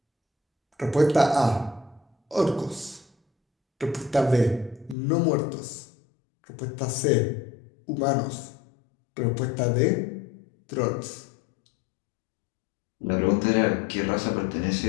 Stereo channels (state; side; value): drops out; right; at 5.0 s